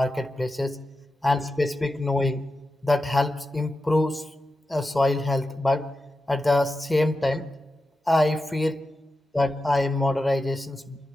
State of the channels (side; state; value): both; normal; correlation 0.91